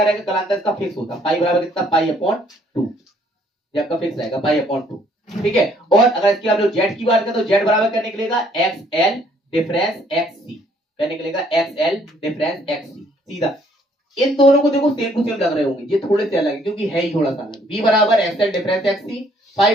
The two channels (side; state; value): both; normal; correlation 0.64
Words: रहेगा, कलांतर इसका फिक्स होता है, पाई बराबर कितना, पाई अपॉन 2, ये आपका फिक्स रहेगा पाई अपॉन 2, ठीक है। और अगर इसकी आप लोग जेड की बात करें तो जेड बराबर क्या निकलेगा, एक्स एल डिफरेंस एक्स सी, क्या निकलेगा, एक्स एल डिफरेंस एक्स सी, सीधा। इन दोनों को देखो सेम टू सेम लग रहे होंगे, ये थोड़े से अलग है क्योंकि है ही थोड़ा सा अलग। बी बराबर एक्स एल डिफरेंस एक्स सी, पाई